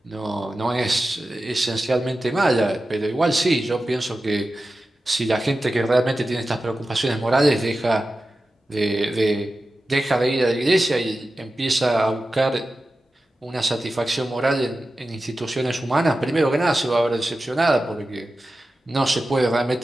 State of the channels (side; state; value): both; normal; correlation 0.93